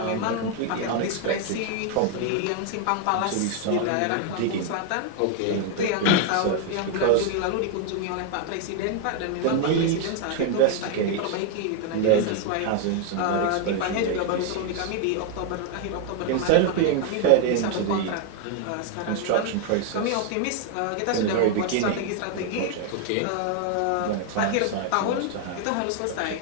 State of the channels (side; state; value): both; different; correlation 0.00